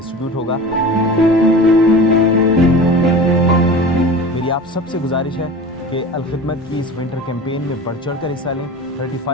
होगा। मेरी आप सबसे गुजारिश है कि अल खिदमत की इस विंटर कैंपेन में बढ़ चढ़ कर हिस्सा लें।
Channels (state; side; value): normal; both; correlation 0.35